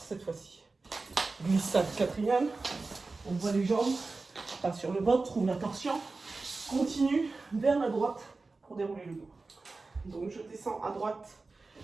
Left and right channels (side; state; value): left; quieter; 3.7 dB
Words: fois-ci. Glissade quatrième, on voit les jambes, pas sur le ventre, trouve la torsion, continue vers la droite pour dérouler le dos. Donc je descends à droite,